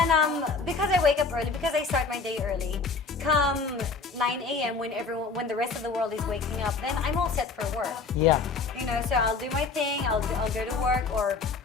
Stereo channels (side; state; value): right; quieter; 4.4 dB